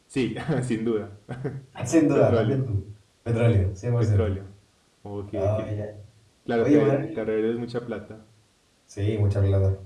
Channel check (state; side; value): identical; both; correlation 1.00